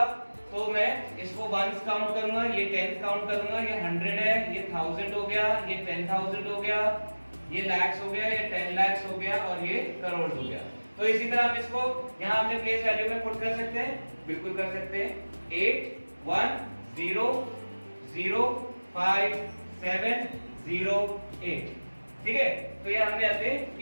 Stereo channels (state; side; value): inverted; both; correlation -1.00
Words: तो मैं इसको वंस काउंट करूंगा, ये टेंस काउंट करूंगा, ये 100 है, ये 1000 हो गया, ये 10,000 हो गया, ये लैक्स हो गया, ये 10 lakhs हो गया और ये करोड़ हो गया। तो इसी तरह हम इसको यहाँ अपने प्लेस वैल्यू में पुट कर सकते हैं, बिल्कुल कर सकते हैं। 8 1 0 0 5 7 0 8, ठीक है। तो ये हमने अपने